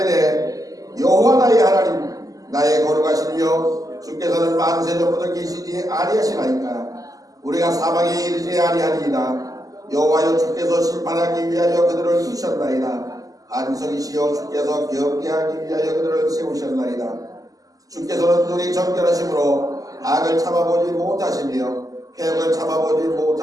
여호와 나의 하나님 나의 거룩하시며 주께서는 만세 전부터 계시지 아니하시나이까 우리가 사방에 이르지 아니하리이다. 여호와여 주께서 심판하기 위하여 그들을 두셨나이다. 안석이시여 주께서 경계하기 위하여 그들을 세우셨나이다. 주께서는 눈이 정결하심으로 악을 참아보지 못하시며 폐역을 참아보지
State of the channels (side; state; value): left; late; 0.17 ms